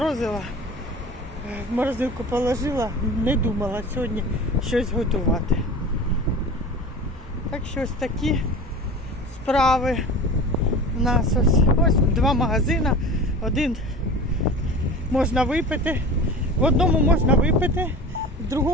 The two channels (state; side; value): normal; both; correlation 0.35